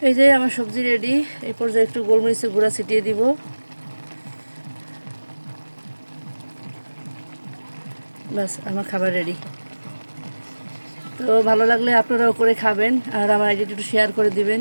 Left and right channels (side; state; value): both; inverted; correlation -1.00